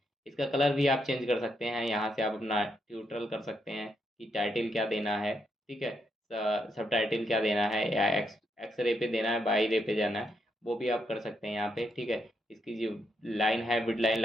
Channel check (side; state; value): both; normal; correlation 0.79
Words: इसका कलर भी आप चेंज कर सकते हैं। यहाँ से आप अपना ट्यूटोरियल कर सकते हैं कि टाइटल क्या देना है। ठीक है, सब टाइटल क्या देना है, या एक्स रे पे देना है, बाई रे पे जाना है, वो भी आप कर सकते हैं यहाँ पे। ठीक है, इसकी जो लाइन है विड लाइन